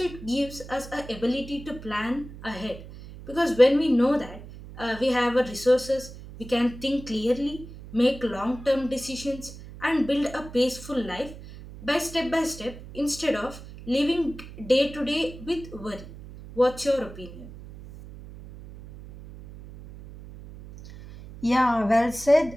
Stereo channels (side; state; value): right; noise; hum, 15 dB below the sound